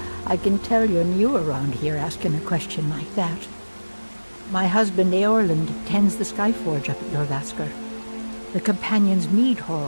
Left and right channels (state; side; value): inverted; both; correlation -1.00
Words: I can tell you're new around here asking a question like that. My husband Eorlund tends the Skyforge up at Jorvaskr, the Companion's Mead